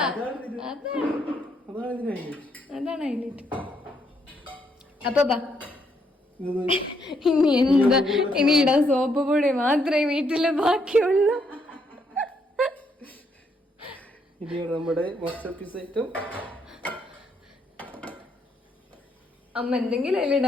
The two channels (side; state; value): both; normal; correlation 0.74